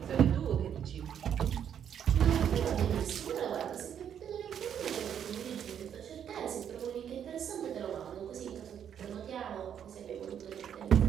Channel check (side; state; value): left; quieter; 8.9 dB